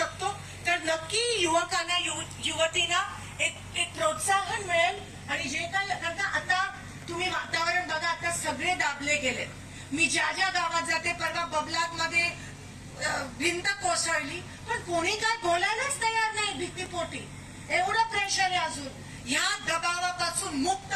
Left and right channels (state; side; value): identical; both; correlation 1.00